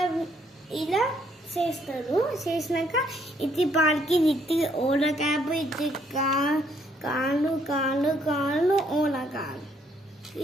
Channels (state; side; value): normal; both; correlation 0.69